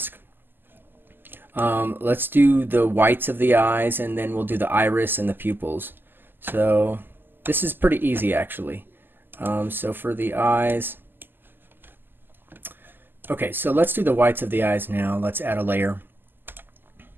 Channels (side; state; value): left; late; 0.094 ms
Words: Let's do the whites of the eyes, and then we'll do the iris and the pupils. So this is pretty easy actually. So for the eyes, okay, so let's do the whites of the eyes now. Let's add a layer,